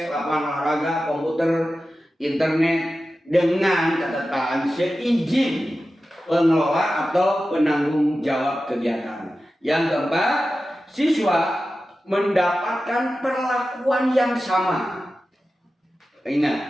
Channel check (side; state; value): both; normal; correlation 0.94